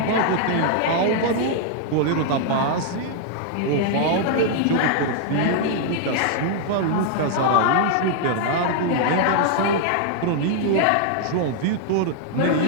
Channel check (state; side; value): different; both; correlation 0.00